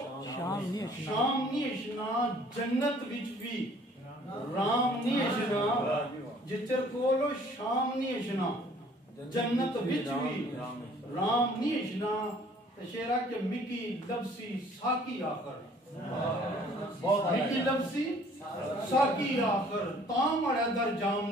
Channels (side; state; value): both; normal; correlation 0.56